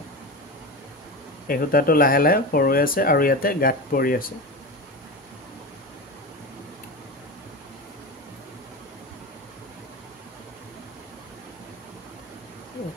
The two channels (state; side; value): normal; both; correlation 0.24